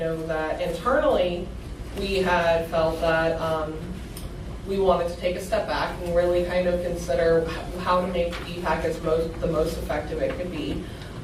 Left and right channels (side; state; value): both; identical; correlation 1.00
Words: that internally we had felt that we wanted to take a step back and really kind of consider how to make the BPAC the most effective it could be.